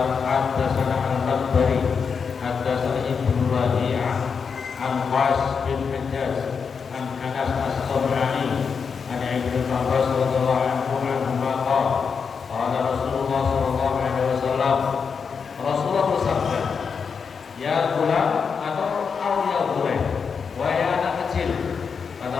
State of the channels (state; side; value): quieter; right; 5.9 dB